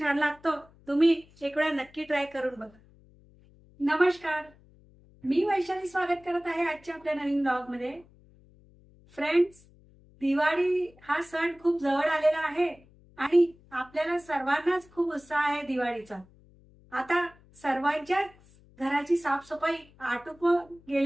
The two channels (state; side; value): noise; left; hum, 27 dB below the sound